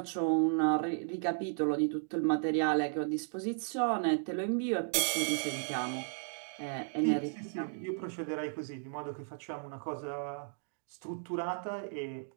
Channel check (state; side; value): silent; left; digital silence